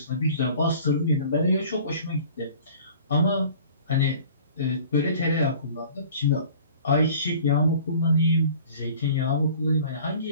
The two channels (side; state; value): both; inverted; correlation -0.47